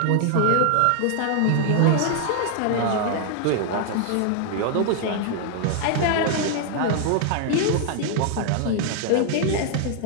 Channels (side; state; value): both; different; correlation 0.00